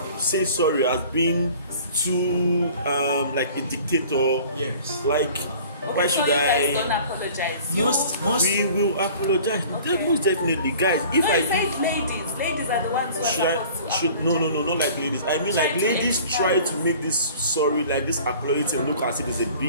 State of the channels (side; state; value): both; inverted; correlation -0.47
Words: say sorry as being too like a dictator. Yes. Like Why so should you guys I? don't apologize. Most We will apologize. Okay. Most definitely, guys. If No, I you do, said ladies. Ladies are the ones who are should I? supposed to Should no, not like ladies. I mean, Try like to ladies expand. try to make this sorry, like this apology thing look as if it's a